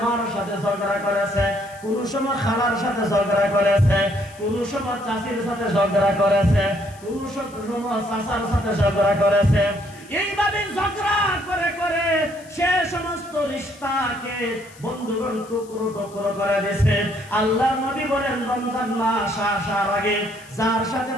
মার সাথে ঝগড়া করেছে, কোন সময় খালার সাথে ঝগড়া করেছে, কোন সময় চাচির সাথে ঝগড়া করেছে, কোন সময় চাচার সাথে ঝগড়া করেছে, এইভাবে ঝগড়া করে করে সে সমস্ত রিশতাকে বন্ধুগণ টুকরো টুকরো করে দিয়েছে। আল্লাহ নবী বলেন রমজান মাস আসার আগে যার সাথে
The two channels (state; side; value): noise; left; hiss, 24 dB below the sound